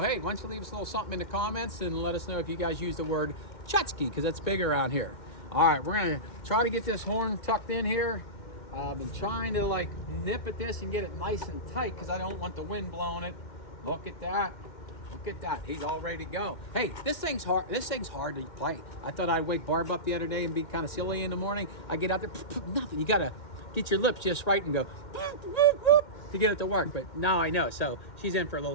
why don't you leave us a little something in the comments and let us know if you guys use the word Tchotchke, because that's big around here. All right, we're gonna try to get this horn tucked in here. I've been trying to like nip at this and get it nice and tight because I don't want the wind blowing it. Look at that. Look at that. He's all ready to go. Hey, this thing's hard. This thing's hard to play. I thought I'd wake Barb up the other day and be kind of silly in the morning. I get out there, nothing. You gotta get your lips just right and go to get it to work. But now I know. So she's in for a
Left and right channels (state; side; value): late; right; 2.1 ms